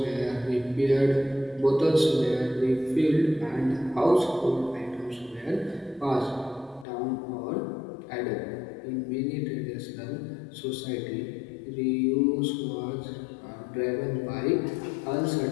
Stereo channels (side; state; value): right; drops out; at 6.9 s